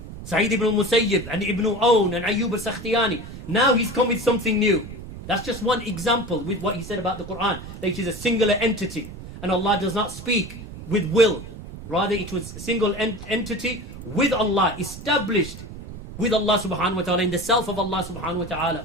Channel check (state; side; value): noise; right; rumble, 12 dB below the sound